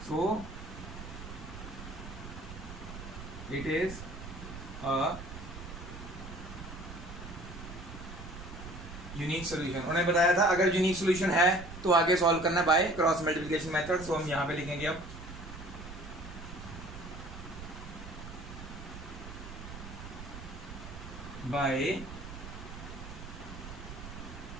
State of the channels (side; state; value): right; noise; rumble, 11 dB below the sound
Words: so it is a unique solution. उन्होंने बताया था अगर यूनिक सॉल्यूशन है तो आगे सॉल्व करना बाय क्रॉस मल्टीप्लिकेशन मेथड। सो हम यहां पे लिखेंगे अब बाय